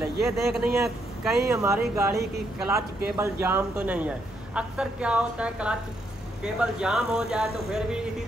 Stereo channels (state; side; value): normal; both; correlation 0.76